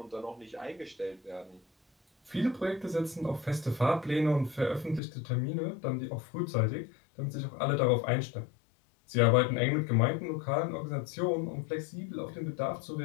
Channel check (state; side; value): drops out; right; at 5.0 s